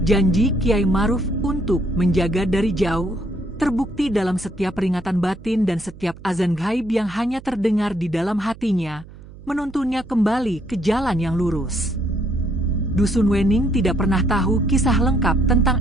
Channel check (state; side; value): noise; right; hum, 19 dB below the sound